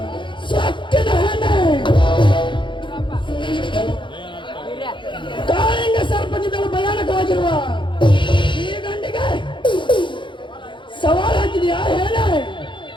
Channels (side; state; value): right; late; 0.23 ms